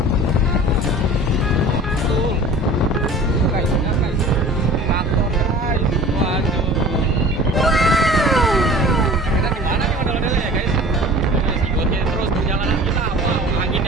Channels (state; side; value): normal; both; correlation 0.43